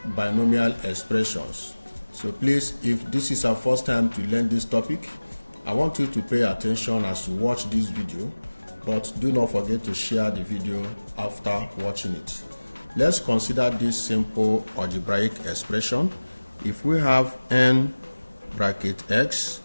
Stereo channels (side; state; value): both; inverted; correlation -1.00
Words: binomial expressions. So please, if this is our first time to learn this topic, I want you to pay attention as you watch this video, but do not forget to share the video after watching it. Let's consider this simple algebraic expression. If we have n bracket x